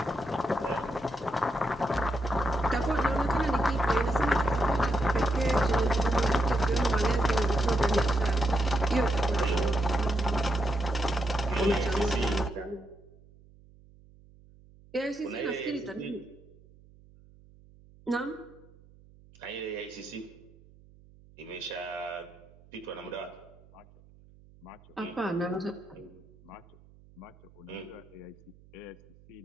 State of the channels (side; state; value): right; noise; hum, 25 dB below the sound